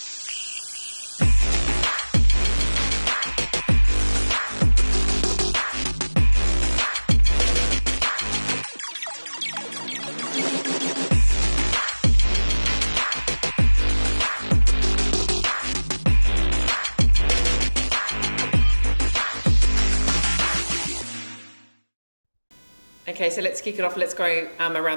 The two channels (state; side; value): inverted; both; correlation -1.00